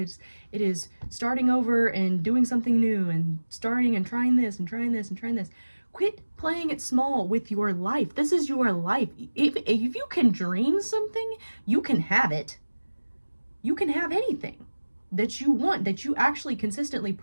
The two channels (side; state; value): both; inverted; correlation -1.00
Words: is starting over and doing something new and starting and trying this and trying this and trying this. Quit playing it small with your life. This is your life. If you can dream something, you can have it. You can have anything that you want, that you actually consistently